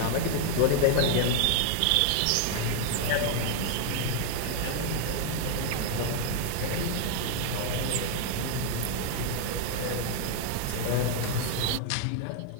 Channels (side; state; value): both; different; correlation 0.00